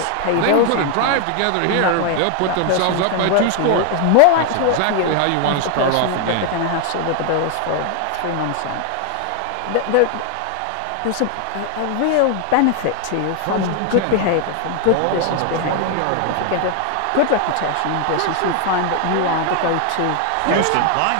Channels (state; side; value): different; both; correlation 0.00